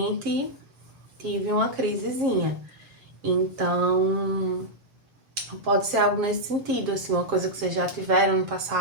tive uma crisezinha. Então, pode ser algo nesse sentido, assim, uma coisa que vocês já tiveram no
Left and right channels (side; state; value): left; late; 7.4 ms